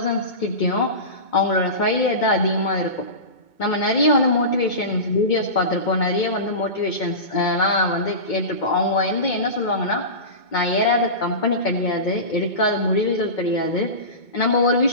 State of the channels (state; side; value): late; right; 2.2 ms